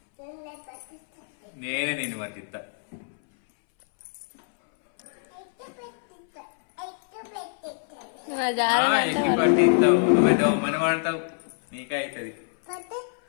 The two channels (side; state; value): right; silent; 61 dB below the other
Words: నేనే నిన్ను పట్టిస్తా ఎక్కి పట్టిస్తావు నువ్వే మన వాడతావు నీకే అవుతుంది